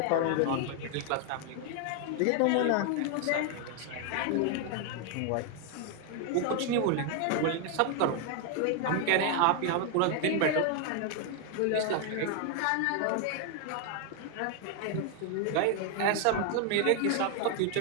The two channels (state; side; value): different; both; correlation 0.00